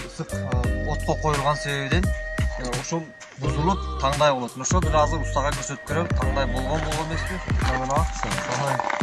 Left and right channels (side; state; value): both; identical; correlation 1.00